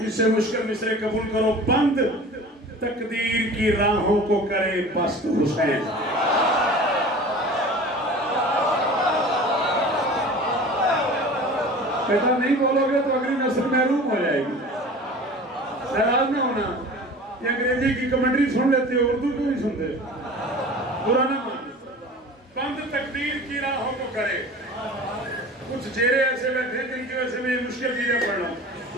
سے مشکل مصرے قبول کرو بند تقدیر کی راہوں کو کرے پست حسین کہتا نہیں بولو گے تو اگلی نسل محروم ہو جائے گی. ناراض نہ ہونا. یہ انگریزی کی کمنٹری سن لیتے ہو, اردو کیوں نہیں سنتے؟ برا نہ مان. بند تقدیر کی راہوں کو کرے. کچھ چہرے ایسے بیٹھے ہیں جن کی وجہ سے میں یہ مشکل چیزیں پڑھ رہا ہوں,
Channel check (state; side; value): normal; both; correlation 0.40